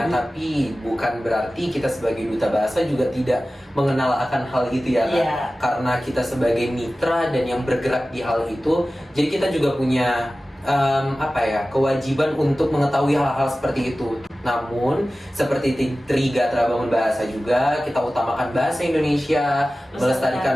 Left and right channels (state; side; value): normal; both; correlation 0.96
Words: tapi bukan berarti kita sebagai Duta Bahasa juga tidak mengenal akan hal itu ya Kak. Yeah. Karena kita sebagai mitra dan yang bergerak di hal itu, jadi kita juga punya kewajiban untuk mengetahui hal-hal seperti itu. Namun seperti Trigatra Bangun Bahasa juga, kita utamakan bahasa Indonesia,